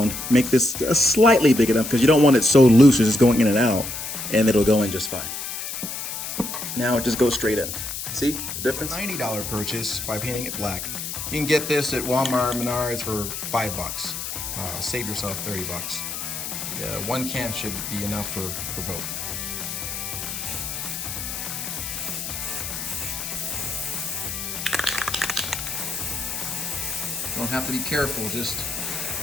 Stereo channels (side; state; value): left; noise; hiss, 6 dB below the sound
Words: make this slightly big enough because you don't want it so loose, it's just going in and out, and it'll go in just fine. Now it just goes straight in. See the difference? $90 purchase by painting it black. You can get this at Walmart, Menards for $5. Save yourself $30. One can should be enough for both. Don't have to be careful, you